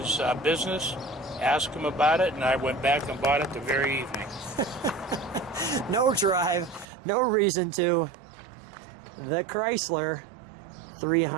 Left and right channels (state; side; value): drops out; left; at 6.9 s